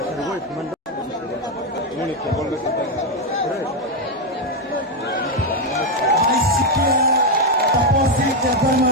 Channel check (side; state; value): both; normal; correlation 0.04